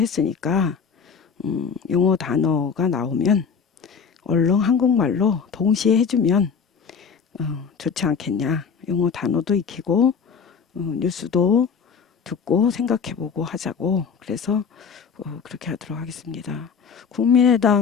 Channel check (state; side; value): quieter; right; 6.1 dB